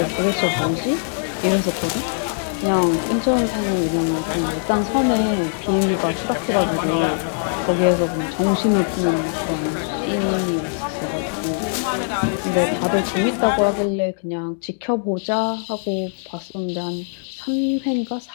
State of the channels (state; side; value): silent; right; digital silence